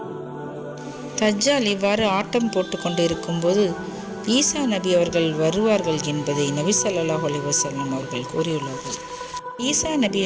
தஜ்ஜால் இவ்வாறு ஆட்டம் போட்டு கொண்டு இருக்கும்போது ஈசா நபி அவர்கள் வருவார்கள் என்பதை நபி ஸல்லல்லாஹு அலைஹி வஸல்லம் அவர்கள் கூறியுள்ளார்கள். ஈசா நபி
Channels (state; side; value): identical; both; correlation 1.00